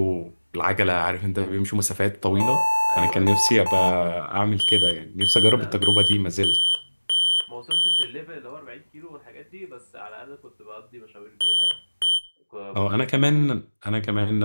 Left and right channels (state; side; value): inverted; both; correlation -1.00